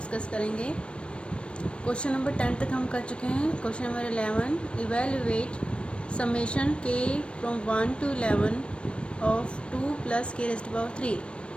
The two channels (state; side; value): late; right; 0.059 ms